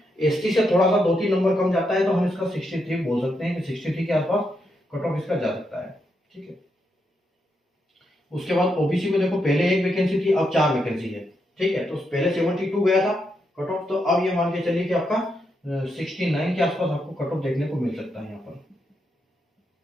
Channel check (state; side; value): normal; both; correlation 0.82